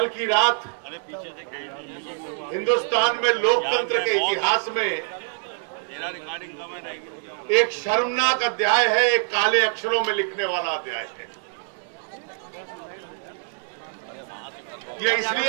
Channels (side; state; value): left; silent; 59 dB below the other